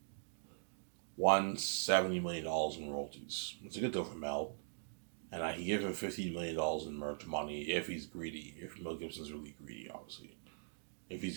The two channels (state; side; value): silent; left; digital silence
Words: million in royalties. It's a good deal for Mel. And I can give him $15 million in merch money if he's greedy. If Mel Gibson's really greedy, obviously.